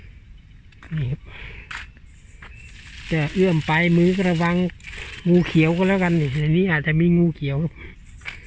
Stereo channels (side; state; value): both; identical; correlation 1.00